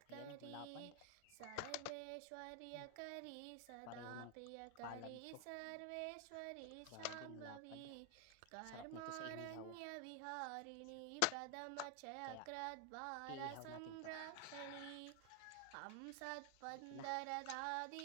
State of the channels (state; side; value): different; both; correlation 0.00